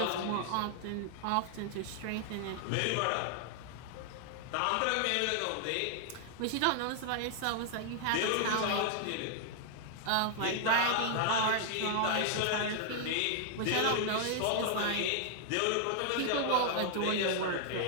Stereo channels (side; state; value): both; different; correlation -0.01